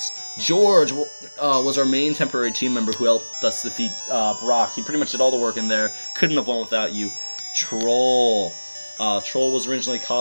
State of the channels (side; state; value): both; inverted; correlation -1.00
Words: George was our main temporary team member who helped us defeat Brock. He pretty much did all the work in there. Couldn't have won without you. Troll. Troll was originally